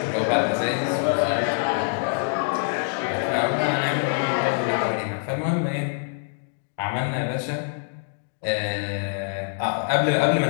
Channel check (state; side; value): silent; right; 62 dB below the other